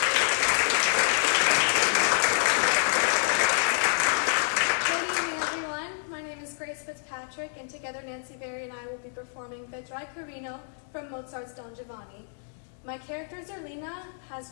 Fitzpatrick, and together Nancy Verry and I will be performing Vedrai Carino from Mozart's Don Giovanni. My character Zerlina has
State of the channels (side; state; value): right; silent; digital silence